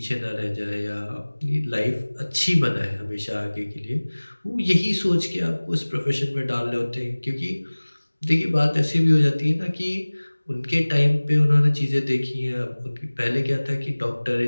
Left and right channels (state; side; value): inverted; both; correlation -1.00